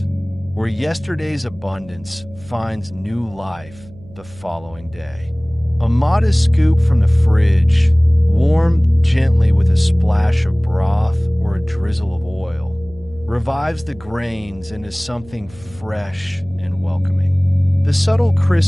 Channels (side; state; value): right; noise; hum, 22 dB below the sound